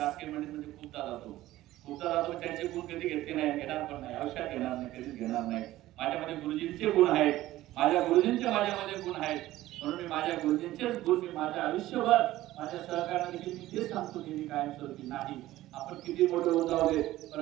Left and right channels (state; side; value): quieter; left; 15.6 dB